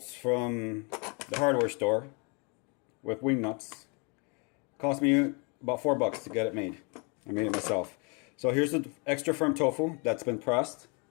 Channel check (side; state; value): right; quieter; 33.5 dB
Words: from the hardware store with wing nuts. Cost me about $4 to get it made. I made it myself. So here's the extra firm tofu that's been pressed.